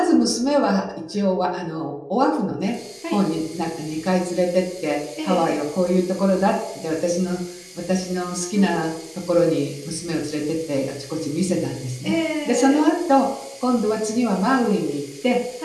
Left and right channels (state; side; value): identical; both; correlation 1.00